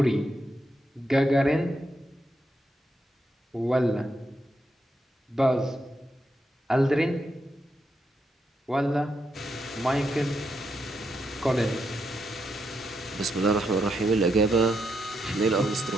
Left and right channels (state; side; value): normal; both; correlation 0.81